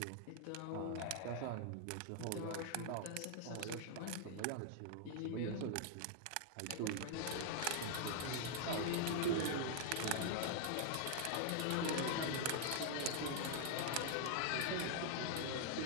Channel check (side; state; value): both; different; correlation 0.00